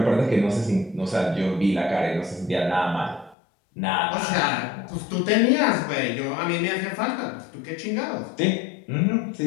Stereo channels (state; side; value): drops out; right; at 3.4 s